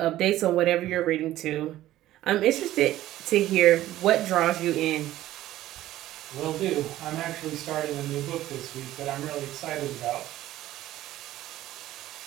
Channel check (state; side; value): quieter; left; 14.5 dB